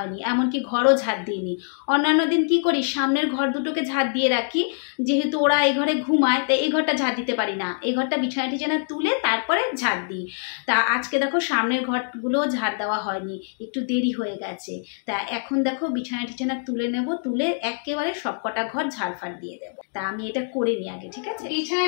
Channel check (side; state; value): right; silent; digital silence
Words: এমনকি ঘরও ঝাড় দিইনি। অন্যান্য দিন কি করি, সামনের ঘর দুটোকে ঝাড় দিয়ে রাখি, যেহেতু ওরা এই ঘরে ঘুমায় তাই এই ঘরটা ঝাড় দিতে পারি না, এই ঘরটা বিছানা টিছানা তুলে তারপরে ঝাড় দিই। তা আজকে দেখো সামনের ঘরগুলো ঝাড় দেওয়া হয়নি, একটু দেরি হয়ে গেছে। তা এখন দেখো বিছানা টিছানা তুলে নেব, তুলে একেবারে সব কটা ঘর ঝাড়ফাড় দিয়ে দেবো। তা আমি এটা করে নিই আগে, ঠিক আছে? বিছানা